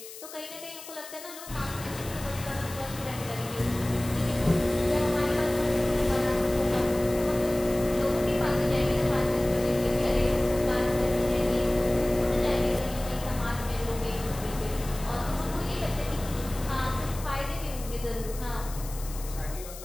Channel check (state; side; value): noise; left; hiss, 14 dB below the sound